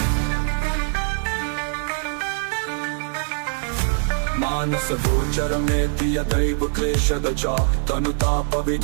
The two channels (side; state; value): left; silent; digital silence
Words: मानस गोचरमेति यदैव क्लेशदचा